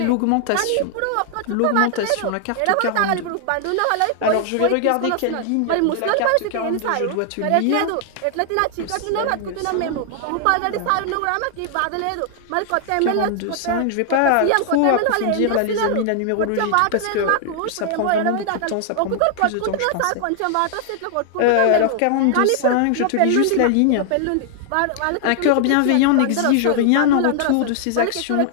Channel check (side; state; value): both; different; correlation 0.00